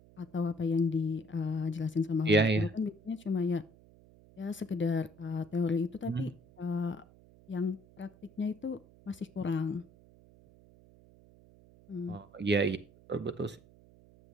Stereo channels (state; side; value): noise; right; hum, 25 dB below the sound